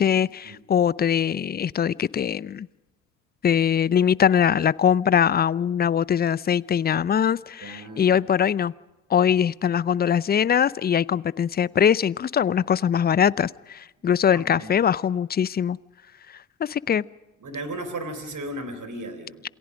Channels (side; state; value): right; quieter; 8.0 dB